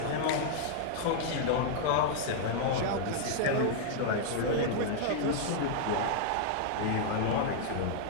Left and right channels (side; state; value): both; different; correlation -0.01